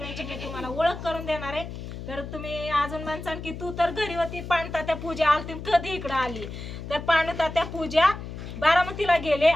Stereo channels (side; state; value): left; noise; hum, 9 dB below the sound